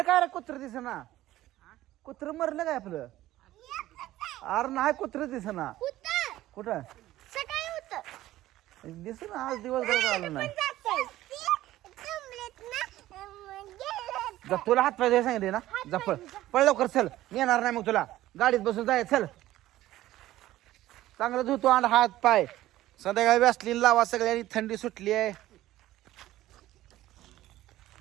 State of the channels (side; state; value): left; quieter; 15.1 dB